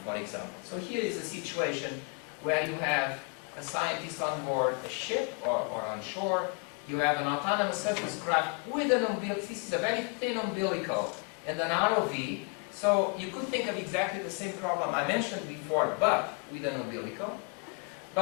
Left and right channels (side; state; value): right; quieter; 34.3 dB